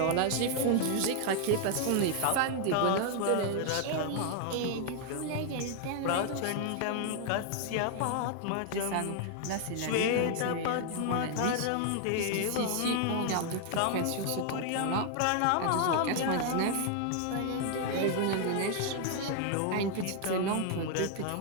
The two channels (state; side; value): different; both; correlation 0.00